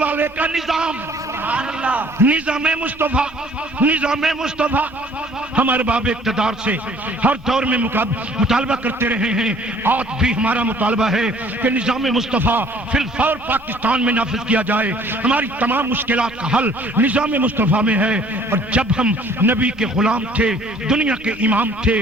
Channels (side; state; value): both; normal; correlation 0.56